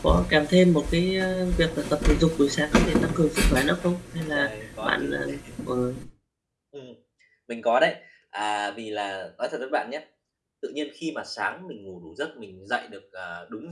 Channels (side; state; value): both; identical; correlation 1.00